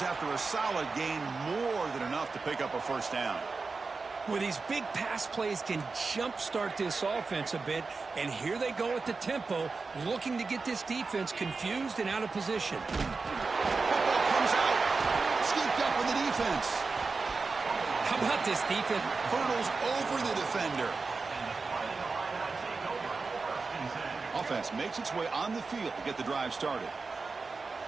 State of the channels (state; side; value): quieter; left; 4.2 dB